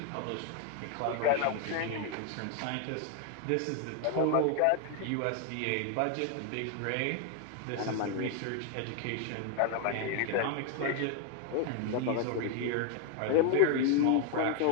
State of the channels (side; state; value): both; different; correlation 0.01